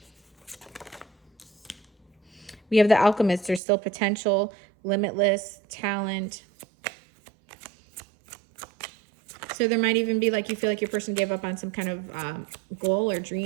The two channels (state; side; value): drops out; left; at 3.6 s